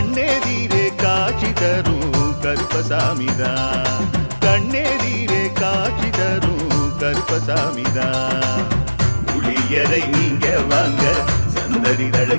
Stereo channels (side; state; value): both; inverted; correlation -1.00